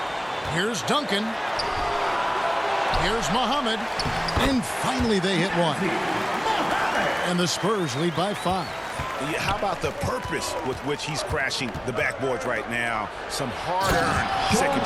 Here's Duncan. Here's Muhammad. And finally they hit one. And the Spurs lead by 5. Yeah, how about the purpose with which he's crashing the backboards right now? Some hard-earned second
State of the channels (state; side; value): identical; both; correlation 1.00